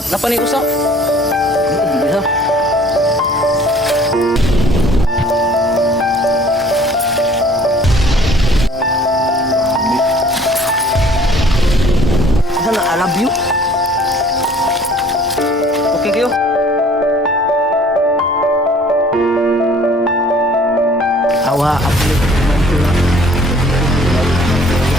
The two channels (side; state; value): both; normal; correlation 0.53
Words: ni usa? Bisa. Sana I love you. Okay kayo. Awa, aku ni teman tu lah.